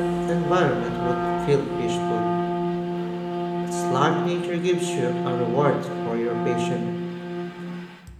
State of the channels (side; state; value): both; identical; correlation 1.00